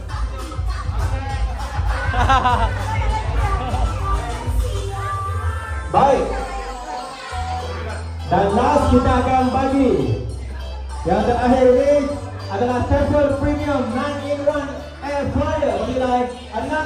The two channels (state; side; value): identical; both; correlation 1.00